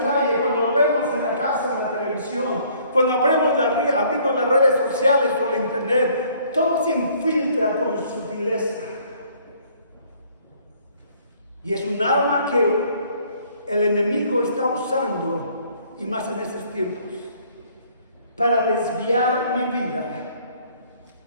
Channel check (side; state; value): both; inverted; correlation -0.60